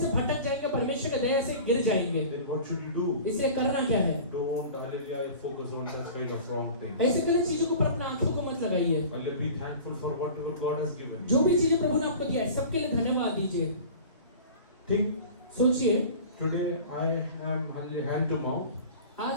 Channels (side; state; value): both; inverted; correlation -0.40